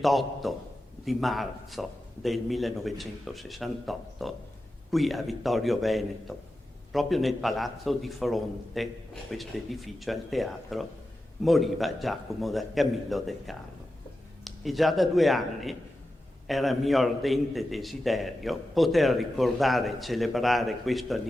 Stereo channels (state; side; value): normal; both; correlation 0.91